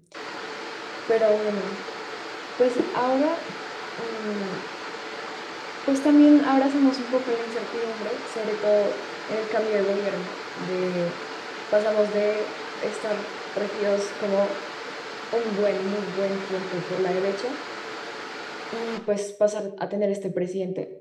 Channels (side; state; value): both; identical; correlation 1.00